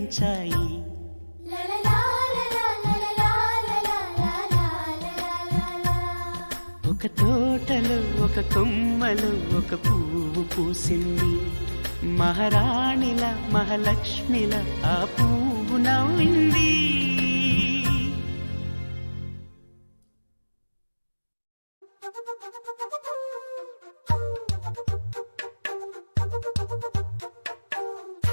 ఒక తోటలో ఒక కొమ్మలో ఒక పువ్వు పూసింది. మహారాణిల మహాలక్ష్మిల ఆ పువ్వు నవ్వింది.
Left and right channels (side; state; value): both; inverted; correlation -1.00